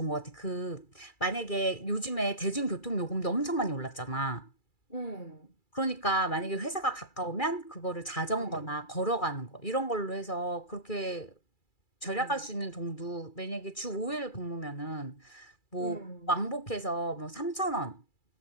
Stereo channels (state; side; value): late; right; 2.3 ms